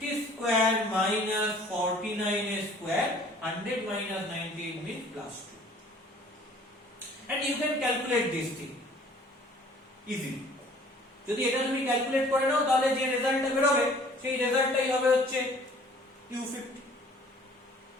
square minus 49 square, 100 minus 98 means plus 2. And you can calculate this thing easily. যদি এটা তুমি calculate করে নাও তাহলে যে রেজাল্টটা বের হবে সেই রেজাল্টটাই হবে হচ্ছে u50।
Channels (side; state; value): both; normal; correlation 0.53